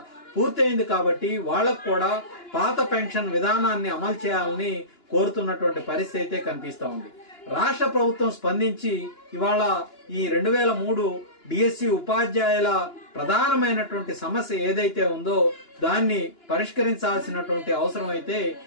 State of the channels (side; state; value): right; late; 2.9 ms